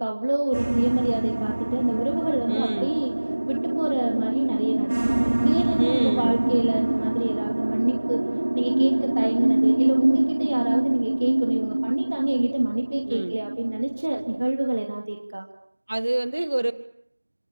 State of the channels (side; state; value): both; inverted; correlation -1.00